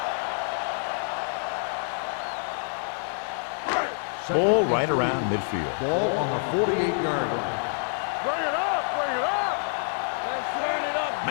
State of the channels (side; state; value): right; silent; 60 dB below the other